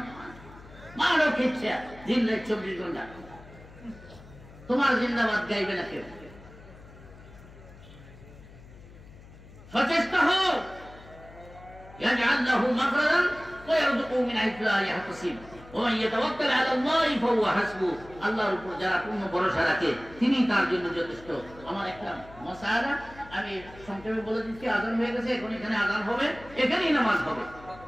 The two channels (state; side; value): noise; left; hum, 20 dB below the sound